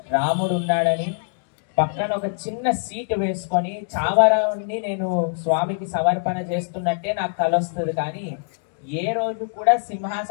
రాముడు ఉన్నాడని, పక్కన ఒక చిన్న సీటు వేసుకొని చావరాన్ని నేను స్వామికి సమర్పణ చేస్తున్నట్టే నాకు కల వస్తుంది. కానీ ఏ రోజు కూడా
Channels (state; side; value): silent; right; digital silence